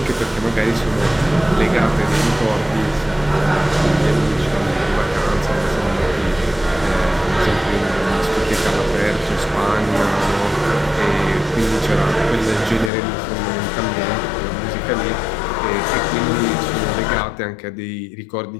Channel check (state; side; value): drops out; right; at 12.9 s